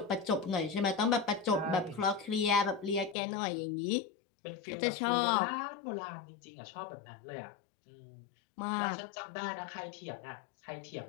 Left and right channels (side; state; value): right; drops out; at 3.2 s